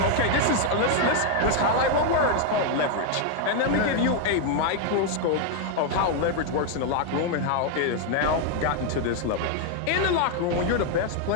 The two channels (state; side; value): different; both; correlation 0.00